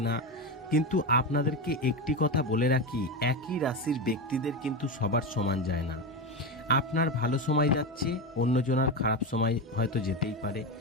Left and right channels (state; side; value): normal; both; correlation 0.16